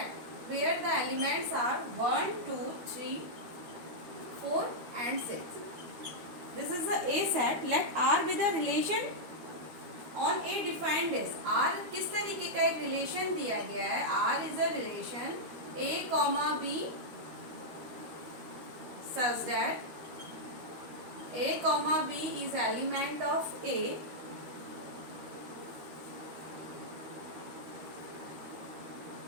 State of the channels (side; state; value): left; late; 13 ms